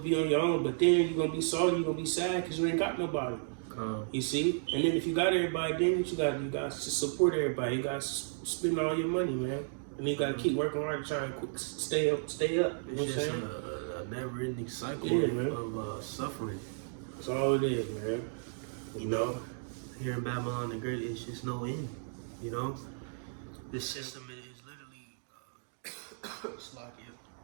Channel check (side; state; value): left; silent; digital silence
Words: on your own. But then you're gonna be sorry, you're gonna be sad because you ain't got nobody. You see? And then if you got everybody, then you got to support everybody. You got to spend all your money, man. And you got to keep working hard to try and stay up. It's just a never-ending cycle of suffering. That's all it is, man. You know, here in Babylon the Great, it's just no end. You know, this system is literally